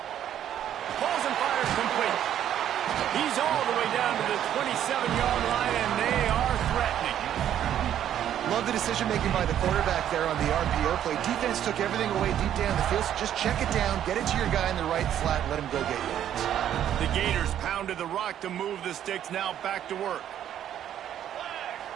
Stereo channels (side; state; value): left; quieter; 10.6 dB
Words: Balls and fires complete. He's all the way down to the 27-yard line, and they are threatening. Love the decision-making by the quarterback there on the RPO play. Defense took everything away deep down the field, so just check it down, get it to your guy in the right flat, and let him go get yards. The Gators pounded the rock to move the sticks, now back to work.